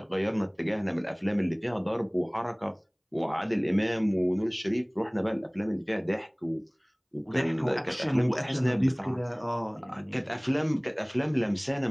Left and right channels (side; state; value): both; identical; correlation 1.00